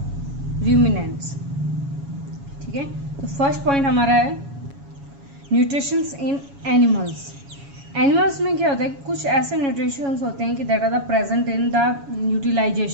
ruminants. ठीक है, तो first point हमारा है nutritions इन animals. Animals में क्या होता है, कुछ ऐसे न्यूट्रिशंस होते हैं कि that are the present in the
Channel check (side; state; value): left; late; 7.2 ms